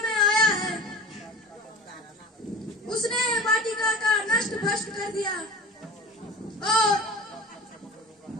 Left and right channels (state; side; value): normal; both; correlation 0.37